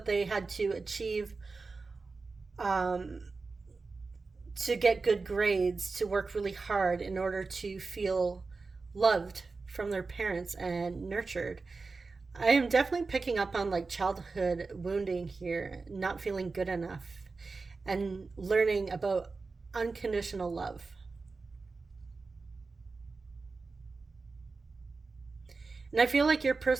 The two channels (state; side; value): quieter; left; 4.1 dB